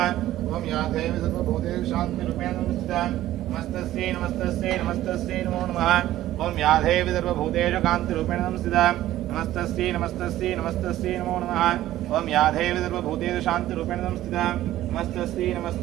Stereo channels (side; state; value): left; quieter; 14.2 dB